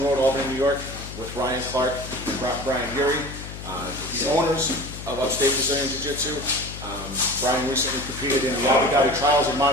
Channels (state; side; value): noise; left; hum, 11 dB below the sound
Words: Road, Albany, New York, with Ryan Clark and Brian Beaury, the owners of Upstate Brazilian Jiu-Jitsu. Brian recently competed in the Abu Dhabi trials in